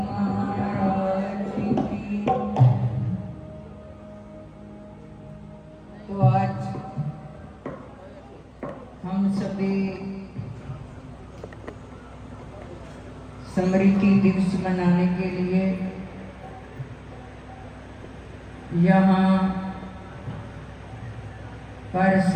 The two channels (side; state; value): both; identical; correlation 1.00